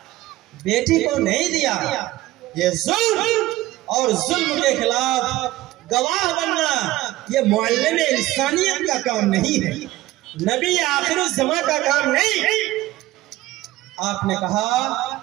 بیٹی کو نہیں دیا، یہ ظلم، اور ظلم کے خلاف گواہ بننا یہ معلم انسانیت کا کام نہیں ہے، نبی آخر الزمان کا کام نہیں۔ آپ نے کہا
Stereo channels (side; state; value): left; quieter; 17.0 dB